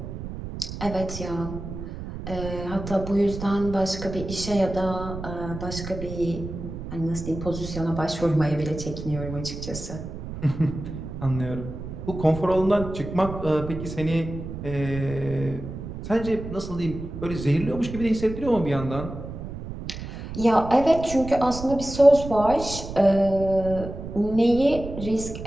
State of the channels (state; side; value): noise; right; rumble, 9 dB below the sound